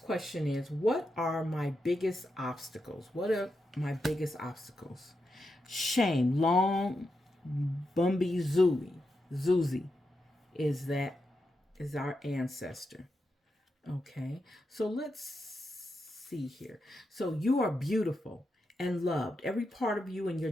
is, what are my biggest obstacles? What are my biggest obstacles? Shame. Long Bumby Zuzi is our ancestor. Okay. So let's see here. So you are beautiful and loved. Every part of you and your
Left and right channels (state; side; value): normal; both; correlation 0.86